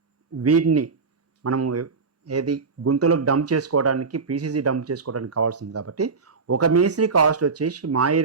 వీటిని మనము ఏది గుంతలో డంప్ చేసుకోవడానికి పీసీసీ డంప్ చేసుకోవడానికి కావాల్సింది కాబట్టి ఒక మేస్త్రి కాస్ట్ వచ్చేసి మా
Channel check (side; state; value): left; quieter; 4.7 dB